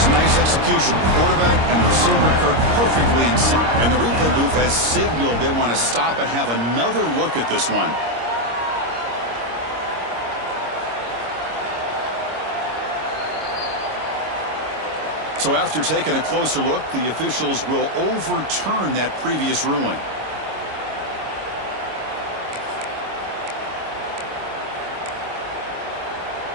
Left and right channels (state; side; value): late; left; 26 ms